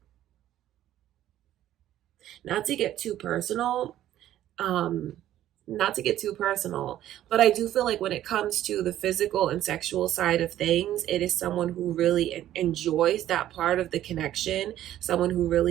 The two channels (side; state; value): left; quieter; 12.7 dB